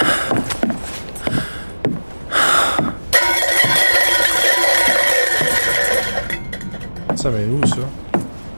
Ça met où ça?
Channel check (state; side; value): inverted; both; correlation -1.00